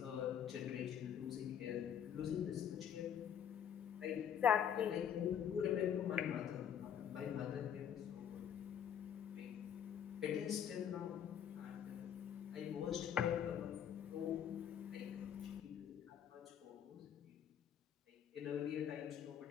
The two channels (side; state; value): right; quieter; 9.0 dB